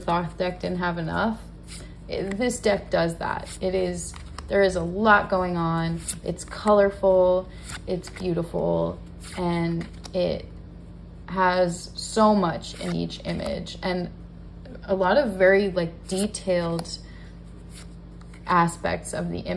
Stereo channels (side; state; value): both; identical; correlation 1.00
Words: deck didn't have enough. This deck does that. There is a lot going on. It's colorful, it's beautiful, and it has so much in each image, and a lot of very like detailed aspects of the